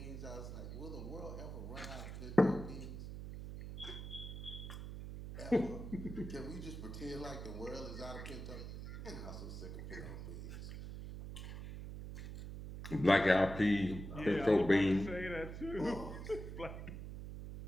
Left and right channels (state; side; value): noise; right; hum, 8 dB below the sound